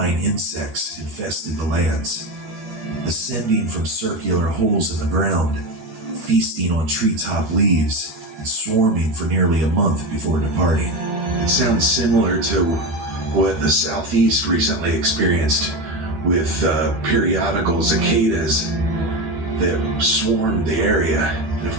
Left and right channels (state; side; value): late; left; 13 ms